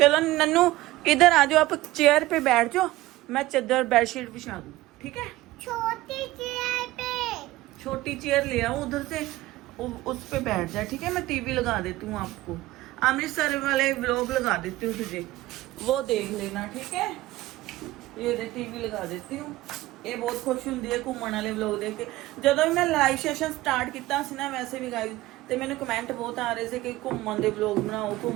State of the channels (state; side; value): quieter; left; 17.6 dB